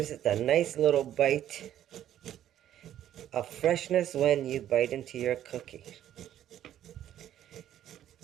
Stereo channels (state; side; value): quieter; left; 11.5 dB